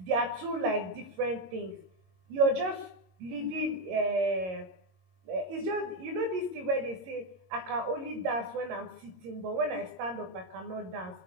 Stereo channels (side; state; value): left; late; 22 ms